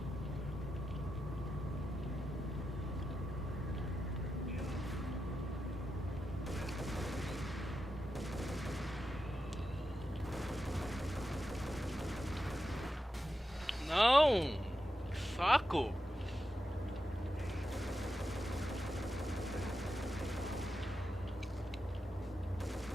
Não! Que saco!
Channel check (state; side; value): normal; both; correlation 0.88